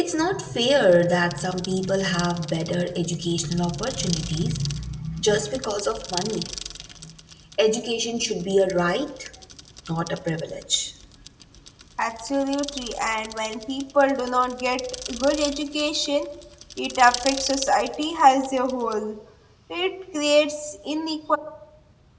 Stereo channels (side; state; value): both; identical; correlation 1.00